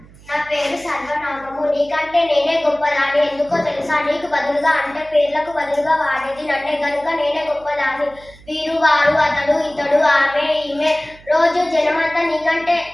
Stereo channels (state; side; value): noise; right; hum, 23 dB below the sound